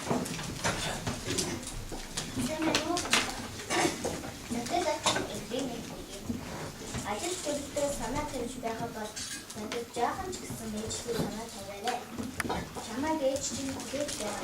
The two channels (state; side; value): identical; both; correlation 1.00